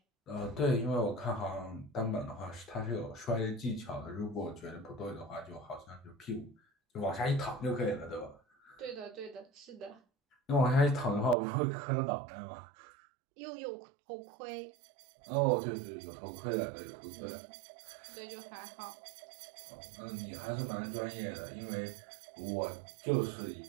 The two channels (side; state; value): left; drops out; at 11.4 s